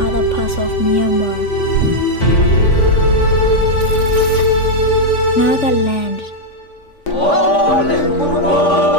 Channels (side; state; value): right; late; 3.5 ms